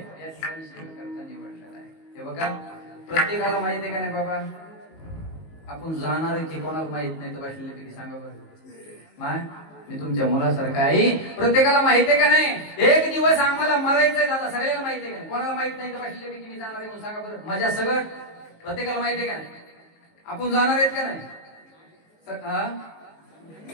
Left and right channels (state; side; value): late; right; 19 ms